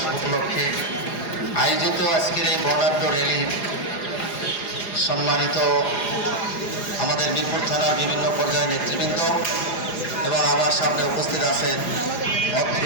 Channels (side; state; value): right; late; 4.9 ms